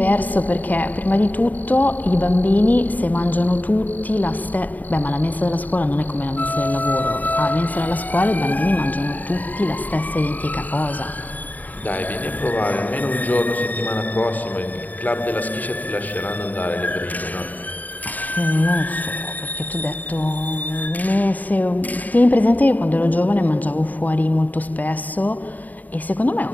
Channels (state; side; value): late; right; 0.080 ms